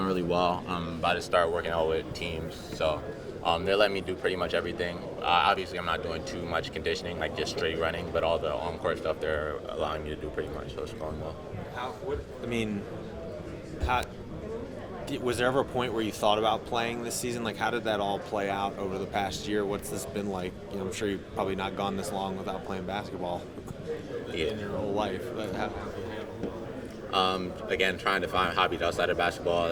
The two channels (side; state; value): both; identical; correlation 1.00